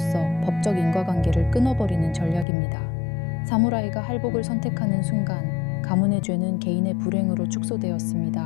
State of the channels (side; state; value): right; drops out; at 2.5 s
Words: 법적 인과관계를 끊어버리는 전략입니다. 사무라이가 할복을 선택하는 순간 가문의 죄는 개인의 불행으로